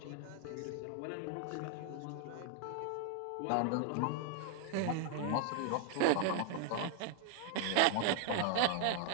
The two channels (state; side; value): different; both; correlation 0.00